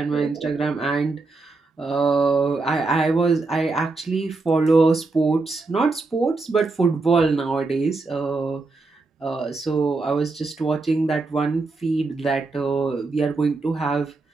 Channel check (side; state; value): left; quieter; 3.6 dB